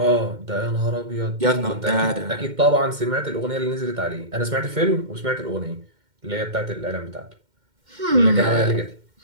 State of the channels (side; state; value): left; late; 2.1 ms